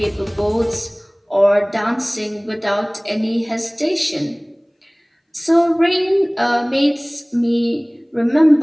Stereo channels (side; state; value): both; identical; correlation 1.00